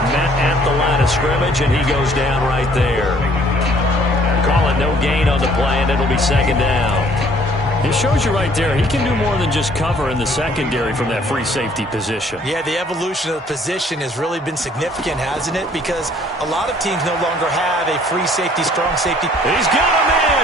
met at the line of scrimmage, and he goes down right there. Call it no gain on the play, and it'll be 2nd down. It shows you right there, he can do more than just cover in the secondary from that free safety position. Yeah, the evolution of the position has really been significant, hasn't it? Because a lot of teams no longer have a free safety, strong safety. He's got a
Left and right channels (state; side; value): normal; both; correlation 0.59